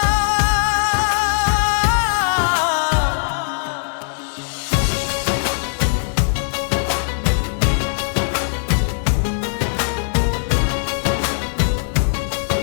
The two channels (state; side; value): silent; right; 66 dB below the other